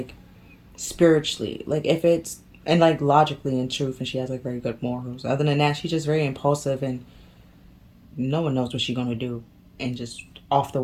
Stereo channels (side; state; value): both; identical; correlation 1.00